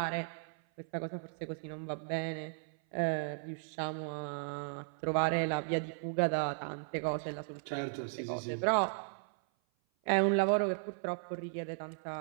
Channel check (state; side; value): silent; left; 54 dB below the other